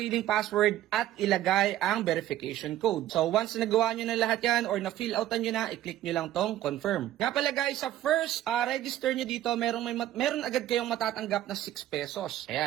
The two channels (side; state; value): left; quieter; 13.3 dB